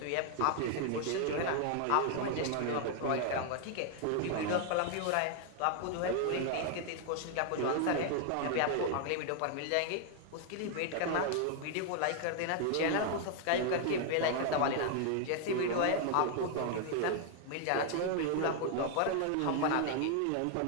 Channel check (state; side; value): different; both; correlation 0.00